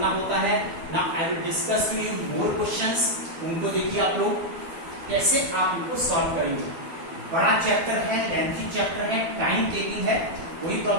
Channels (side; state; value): left; late; 12 ms